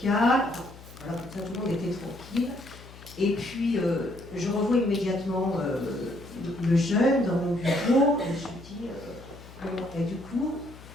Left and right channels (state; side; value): noise; left; hum, 18 dB below the sound